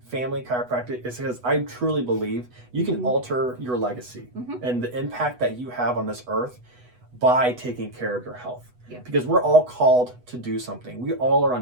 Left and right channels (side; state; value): left; late; 8.1 ms